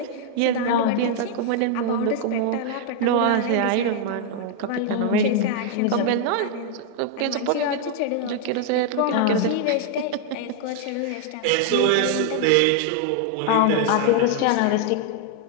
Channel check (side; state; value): both; different; correlation 0.00